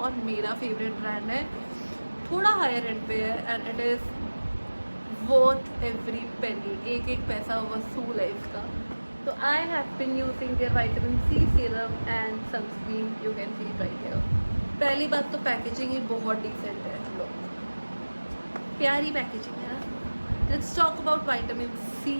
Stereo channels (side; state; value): both; inverted; correlation -1.00